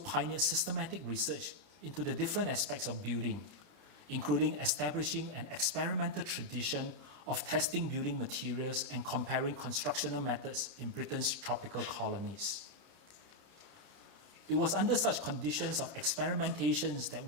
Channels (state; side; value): late; left; 30 ms